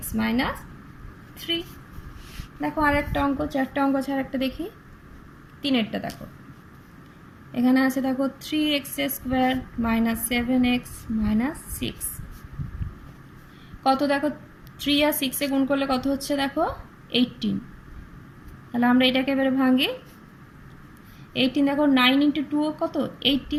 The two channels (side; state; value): both; identical; correlation 1.00